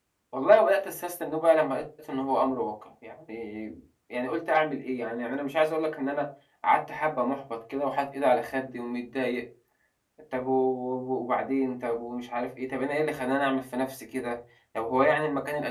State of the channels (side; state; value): both; identical; correlation 1.00